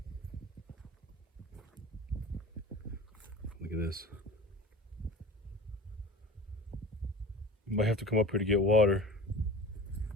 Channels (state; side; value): normal; both; correlation 0.37